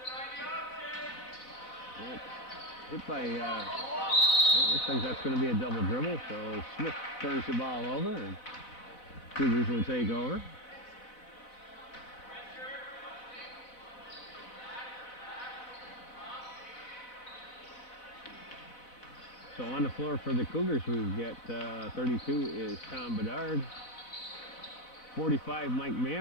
It's hit by, looks like that's going to be a double dribble, so Smith turns the ball over and Cougars will take over. So on the floor for the Cougars, we've got 32 is Tom Bedard. 45, Mike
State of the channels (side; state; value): right; late; 4.0 ms